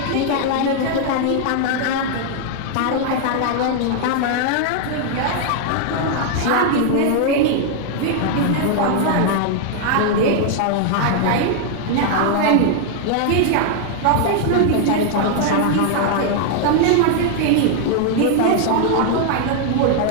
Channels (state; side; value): different; both; correlation 0.00